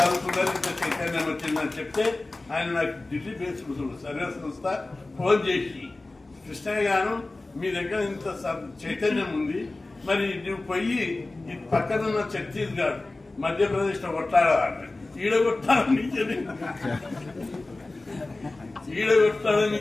ఇంత చైతన్యం వచ్చిందని చెప్తే ఆయన నాకు ఢిల్లీ బేస్డ్ సర్వే సంస్థ ఫోన్ చేసి, కృష్ణయ్య గారు మీ దగ్గర ఇంత చైతన్యం ఉంది, మరి నువ్వు పోయి ఈ పక్కనున్న ఛత్తీస్గఢ్, మధ్యప్రదేశ్ లో కొట్టాడాలంటే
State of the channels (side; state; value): right; quieter; 3.1 dB